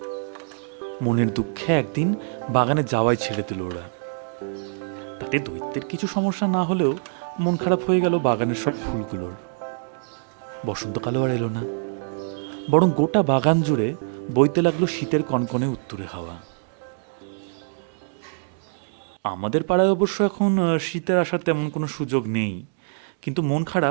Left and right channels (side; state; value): left; silent; digital silence